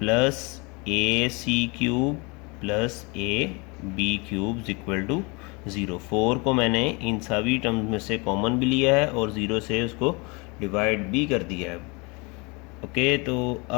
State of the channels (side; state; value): right; quieter; 28.7 dB